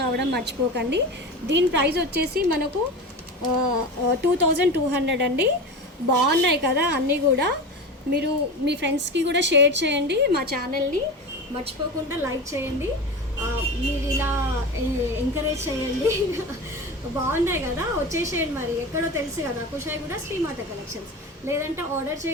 మర్చిపోకండి. దీని ప్రైస్ వచ్చేసి మనకు 2200 అండి. బాగున్నాయి కదా అన్నీ కూడా. మీరు మీ ఫ్రెండ్స్కి కూడా షేర్ చేయండి, మా ఛానల్ని మర్చిపోకుండా లైక్ చేయండి. మీరు ఇలా ఎంకరేజ్ చేయండి. బాగున్నాయి కదా, వచ్చేసేయండి. మరి ఎక్కడో తెలుసు కదా, కుషాయి కూడా శ్రీమాత కలెక్షన్స్. లేదంటే ఆర్డర్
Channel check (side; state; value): both; normal; correlation 0.27